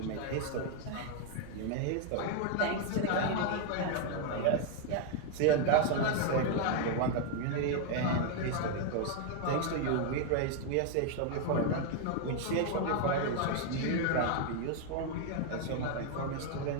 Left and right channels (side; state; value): both; different; correlation 0.00